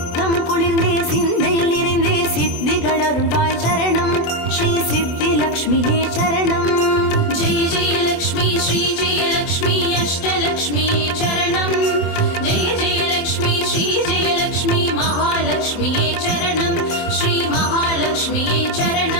குளிர்ந்தே சிந்தையில் நிறைந்தே சித்திகள் அருள்வாய் சரணம் ஸ்ரீ சித்தி லக்ஷ்மியே சரணம் जय जय लक्ष्मी श्री जय लक्ष्मी अष्टलक्ष्मी चरणं जय जय लक्ष्मी श्री जय लक्ष्मी महालक्ष्मी चरणं श्री महालक्ष्मी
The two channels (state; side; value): late; right; 24 ms